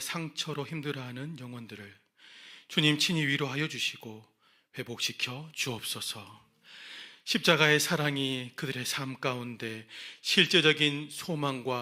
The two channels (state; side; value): identical; both; correlation 1.00